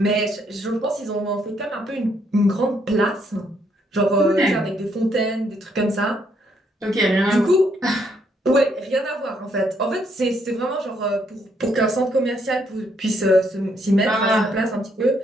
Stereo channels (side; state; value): both; normal; correlation 0.72